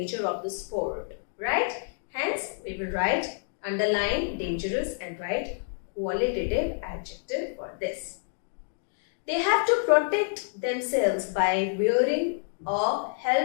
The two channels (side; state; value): right; silent; digital silence